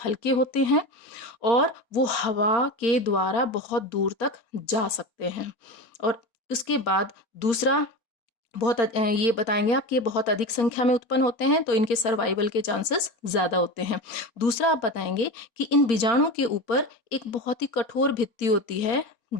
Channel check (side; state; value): right; late; 4.3 ms